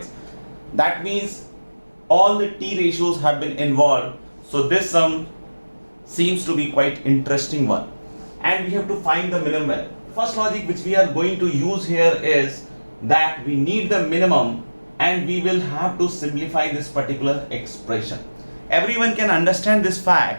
That means all the t ratios have been involved. So this sum seems to be quite interesting one. And we have to find the minimum value. First logic which we are going to use here is that we need the minimum and we will have to simplify this particular expression. Everyone can understand this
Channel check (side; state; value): both; inverted; correlation -1.00